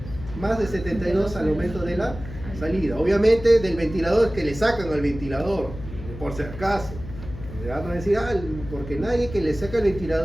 más de 72 al momento de la salida. Obviamente del ventilador que le sacan al ventilador, por si acaso. Ya no decir, porque nadie que le saca el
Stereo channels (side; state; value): left; noise; hum, 12 dB below the sound